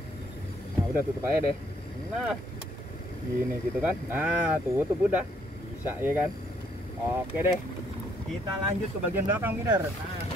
nah udah tutup aja deh. Nah gini gitu kan. Nah tutup udah, bisa ya kan. Oke deh. Kita lanjut ke bagian belakang bidder. Nah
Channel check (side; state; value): both; normal; correlation 0.68